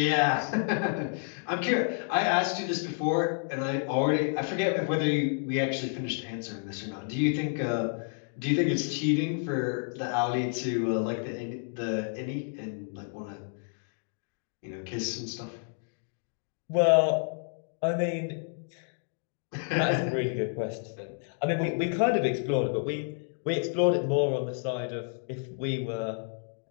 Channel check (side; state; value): right; silent; 58 dB below the other